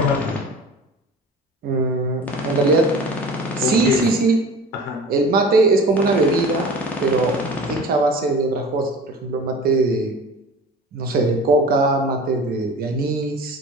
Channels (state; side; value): normal; both; correlation 0.39